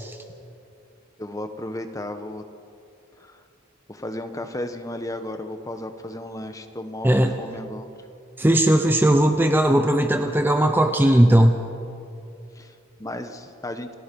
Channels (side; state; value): both; normal; correlation 0.86